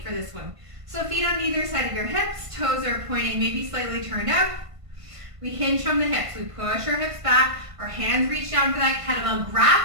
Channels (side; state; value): left; late; 1.5 ms